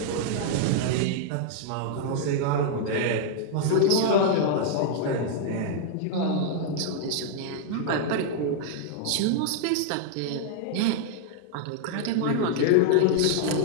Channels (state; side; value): different; both; correlation -0.01